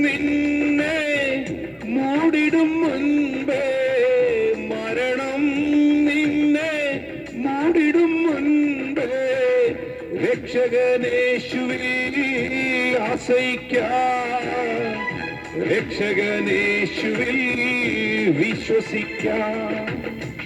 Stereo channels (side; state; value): both; identical; correlation 1.00